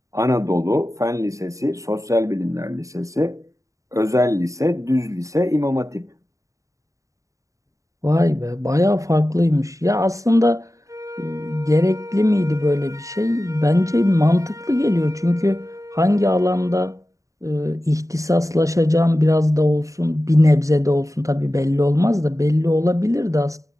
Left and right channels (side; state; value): left; late; 0.16 ms